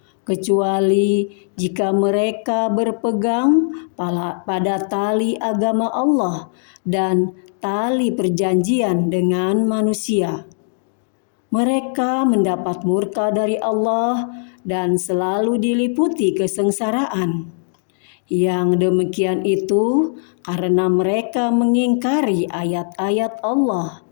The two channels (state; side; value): silent; right; digital silence